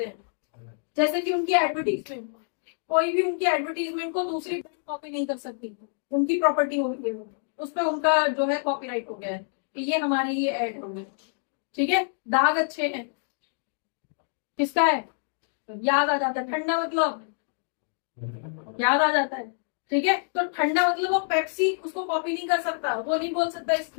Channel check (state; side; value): silent; right; digital silence